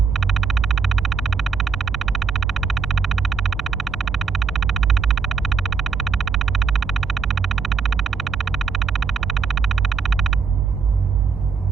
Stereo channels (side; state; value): left; quieter; 5.5 dB